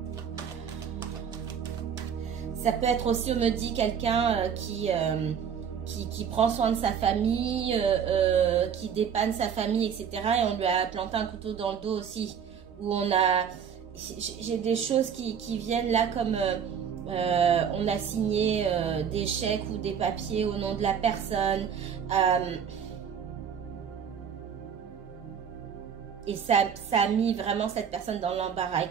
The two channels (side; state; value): left; quieter; 7.6 dB